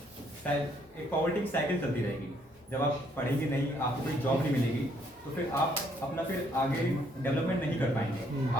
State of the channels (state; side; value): normal; both; correlation 0.68